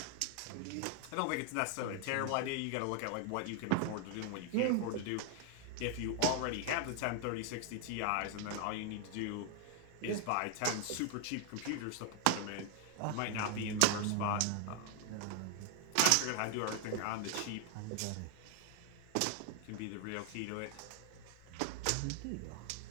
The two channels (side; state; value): both; different; correlation 0.00